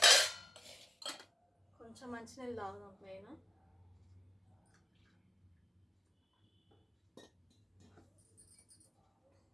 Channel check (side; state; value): both; normal; correlation 0.93